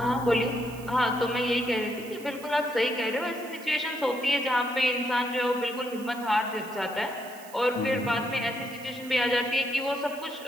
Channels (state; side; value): noise; right; hiss, 19 dB below the sound